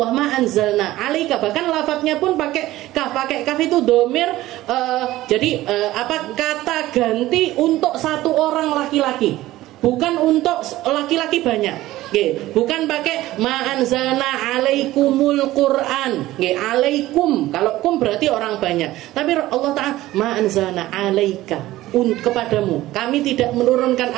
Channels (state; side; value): quieter; left; 16.2 dB